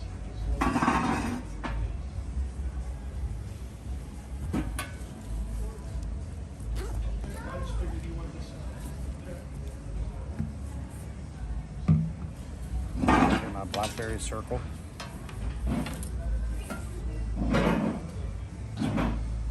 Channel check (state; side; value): identical; both; correlation 1.00